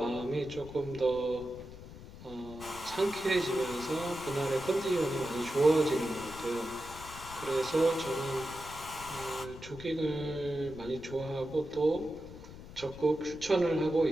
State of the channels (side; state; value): left; noise; rumble, 15 dB below the sound